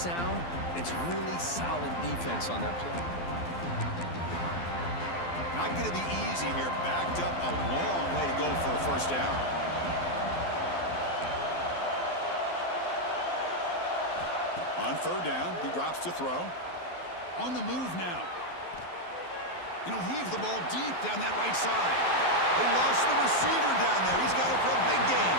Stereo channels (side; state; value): right; late; 12 ms